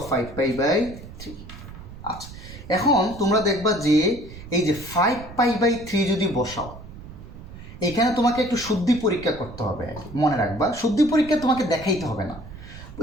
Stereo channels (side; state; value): right; noise; rumble, 15 dB below the sound